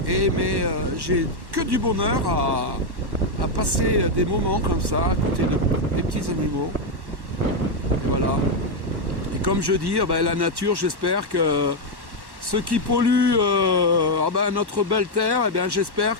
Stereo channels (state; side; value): late; left; 1.1 ms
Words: Mais j'ai que du bonheur à passer des moments comme ça, à côté des petits animaux. Et voilà. Et comme je dis, la nature, j'espère que... Ceux qui polluent notre belle terre, eh bien, j'espère